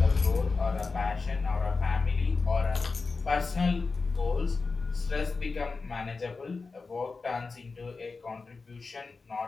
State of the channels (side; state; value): right; quieter; 4.2 dB